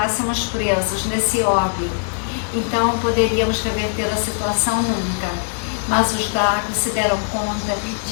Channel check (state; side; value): silent; right; digital silence